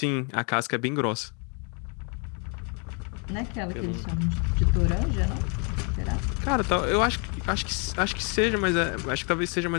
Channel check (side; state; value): right; quieter; 36.2 dB